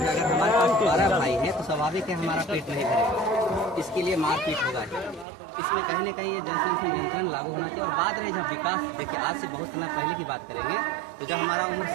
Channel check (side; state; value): left; drops out; at 5.2 s